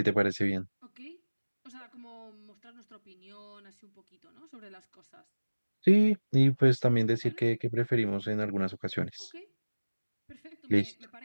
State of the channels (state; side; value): inverted; both; correlation -1.00